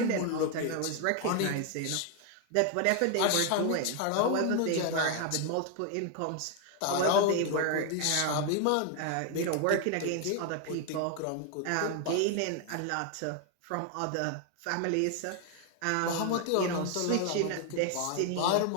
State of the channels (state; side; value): different; both; correlation 0.01